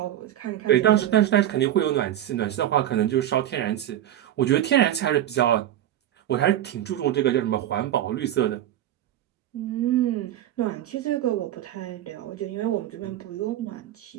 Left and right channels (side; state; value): left; quieter; 12.2 dB